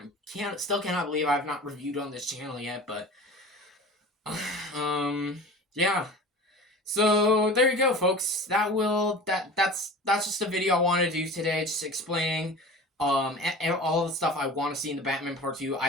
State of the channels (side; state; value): both; normal; correlation 0.37